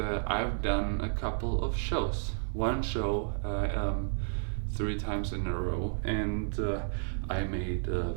done a couple of shows. One show 3 times in a row, and I made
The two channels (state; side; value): silent; left; digital silence